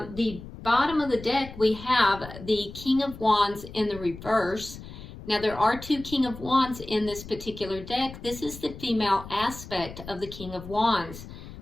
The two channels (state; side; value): noise; left; rumble, 14 dB below the sound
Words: the bottom of the deck, we have the King of Wands in the reverse. Now, there are two King of Wands in this particular deck. This is the female aspect of the King of Wands.